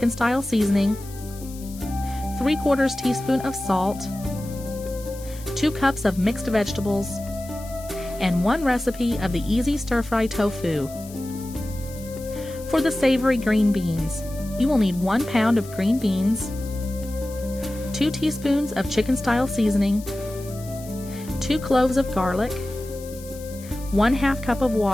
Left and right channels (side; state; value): left; noise; hiss, 18 dB below the sound